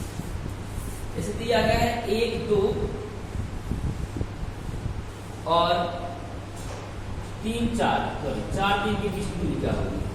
जैसे दिया गया है 1 2 और 3 4, सॉरी 4 3 के बीच की दूरी क्या होगी,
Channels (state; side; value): identical; both; correlation 1.00